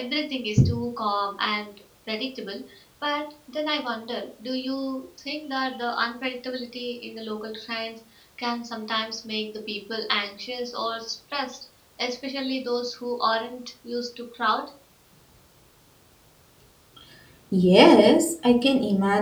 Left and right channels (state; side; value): identical; both; correlation 1.00